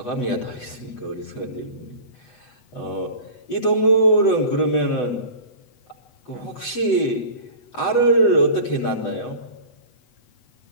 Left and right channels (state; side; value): late; right; 8.1 ms